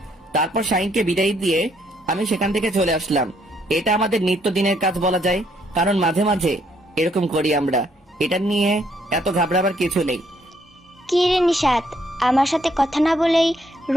তারপর শাহিনকে বিদায় দিয়ে আমি সেখান থেকে চলে আসলাম। এটা আমাদের নিত্যদিনের কাজ বলা যায়, কারণ মাঝে মাঝে এরকম করি আমরা। এটা নিয়ে এত ঘাবড়াবার কিছু নেই। কি রে নিশাত, আমার সাথে কথা না বলেই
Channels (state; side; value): normal; both; correlation 0.70